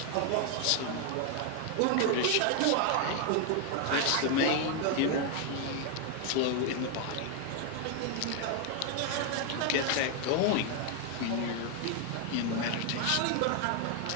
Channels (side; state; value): both; different; correlation 0.01